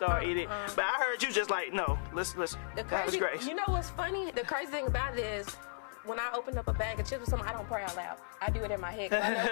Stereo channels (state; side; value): silent; right; digital silence